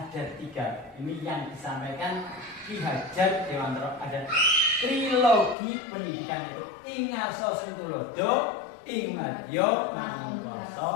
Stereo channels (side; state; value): right; drops out; at 5.6 s